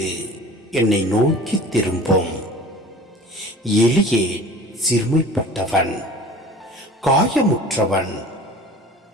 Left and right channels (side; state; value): both; normal; correlation 0.42